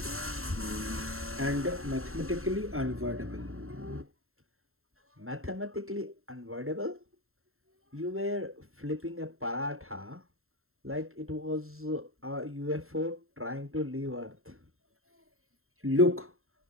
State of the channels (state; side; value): late; left; 0.62 ms